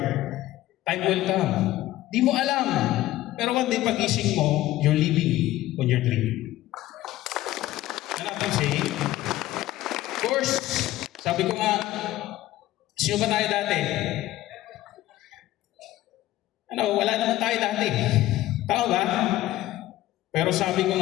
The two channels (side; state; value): right; quieter; 15.5 dB